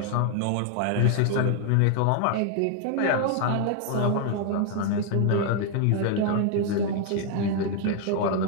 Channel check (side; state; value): both; different; correlation 0.00